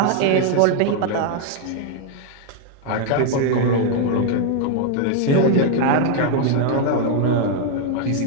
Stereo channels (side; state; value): both; different; correlation 0.00